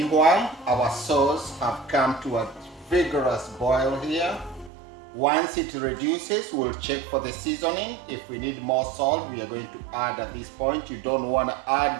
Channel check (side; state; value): left; drops out; at 4.7 s